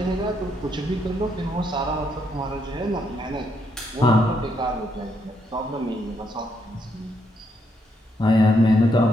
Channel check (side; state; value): both; normal; correlation 0.76